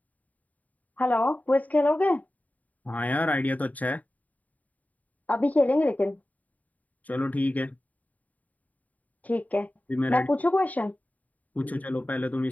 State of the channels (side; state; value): right; late; 0.074 ms